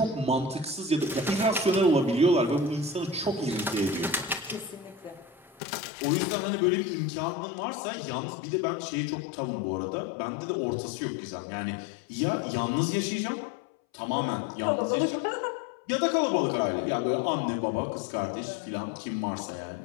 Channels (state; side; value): drops out; right; at 5.6 s